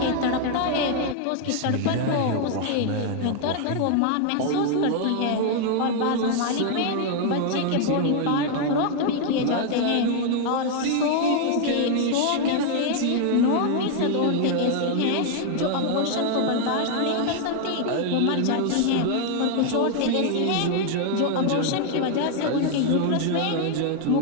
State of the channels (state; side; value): different; both; correlation 0.00